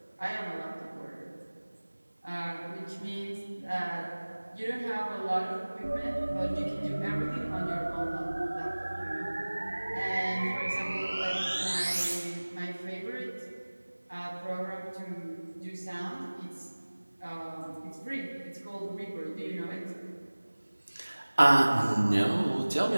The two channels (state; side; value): inverted; both; correlation -1.00